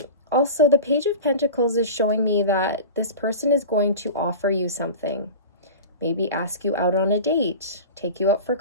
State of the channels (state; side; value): inverted; both; correlation -0.32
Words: Also, the Page of Pentacles is showing me that this person is going to offer you something. Maybe ask you out on a date, take you out for